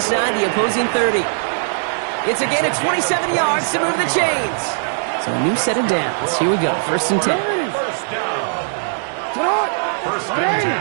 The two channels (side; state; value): left; silent; 64 dB below the other